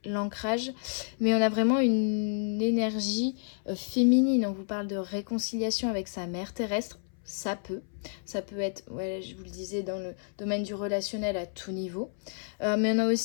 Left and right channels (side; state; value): right; silent; 58 dB below the other